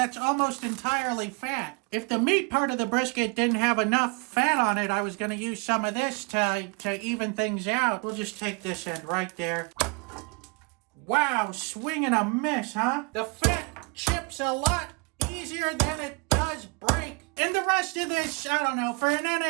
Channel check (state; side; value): quieter; left; 31.0 dB